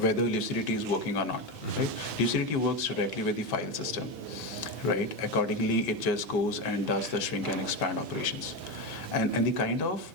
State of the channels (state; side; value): normal; both; correlation 0.15